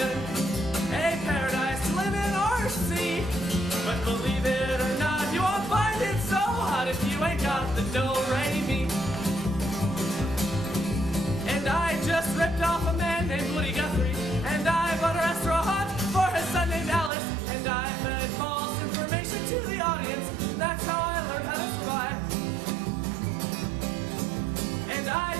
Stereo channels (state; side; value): drops out; left; at 17.1 s